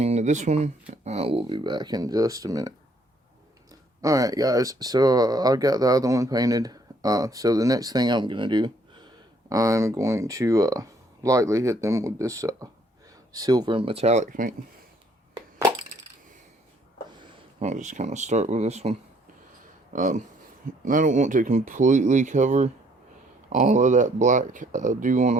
to this one. We'll be back in just a minute. Alright guys, so I got the other one painted. So the next thing I'm going to do, I'm going to lightly hit them with this silver metallic paint. I'll just kind of start with this one. I don't want to completely cover all of that black. I do want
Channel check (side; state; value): both; normal; correlation 0.65